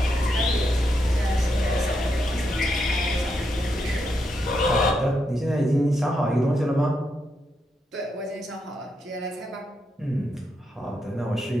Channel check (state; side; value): normal; both; correlation 0.82